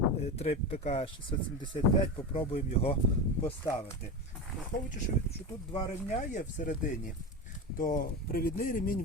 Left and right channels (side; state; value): both; normal; correlation 0.22